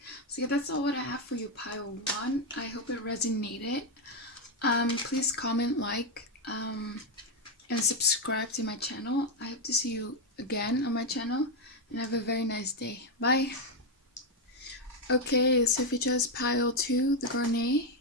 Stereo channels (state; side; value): normal; both; correlation 0.04